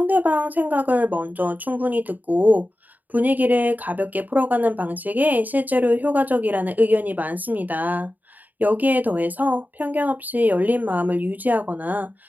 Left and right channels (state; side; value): late; left; 0.083 ms